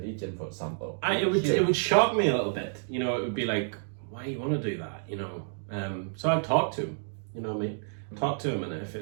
for example. It would shock me a little bit. You know, it would be like, why do you want to do that? You know, so I'd talk to him. You know what I mean? Talk to him, and if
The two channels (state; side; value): silent; left; digital silence